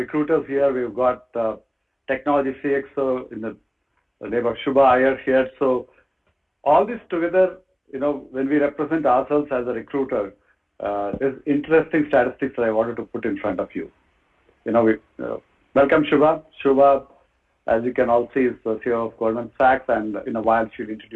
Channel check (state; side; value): identical; both; correlation 1.00